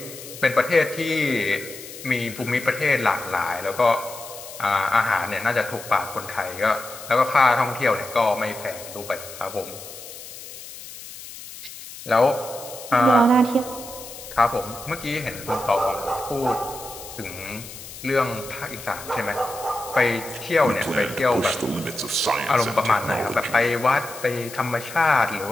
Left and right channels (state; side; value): noise; left; hiss, 14 dB below the sound